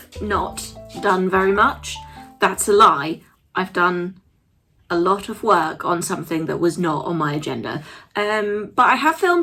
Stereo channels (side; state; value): both; identical; correlation 1.00